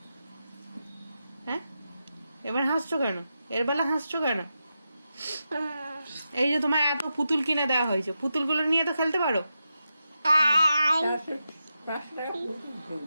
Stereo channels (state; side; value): inverted; both; correlation -0.88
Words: হ্যাঁ, এবার হাসছো কেন? এর বেলা হাসছো কেন? এই যে তোমার এত পুতুল কিনে দেওয়া হয়েছে, পুতুলগুলো নিয়ে তো খেলতে পারো।